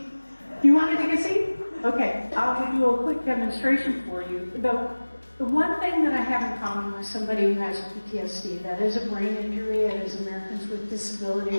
Do you want to take a seat? Okay, I'll do a quick demonstration for you. The one thing that I have in common with somebody who has PTSD, that is a brain injury, as Americans with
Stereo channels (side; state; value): both; inverted; correlation -1.00